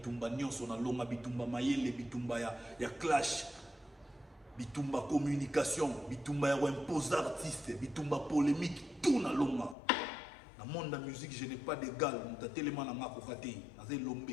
nyonso na longa bitumba mayele bitumba ya clash. Bitumba communication, bitumba impose artiste, bitumba polémique, tout na longa. Dans le monde de la musique, je n'ai pas d'égal. Je suis tellement dans ma kokate, dans un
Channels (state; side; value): drops out; right; at 9.8 s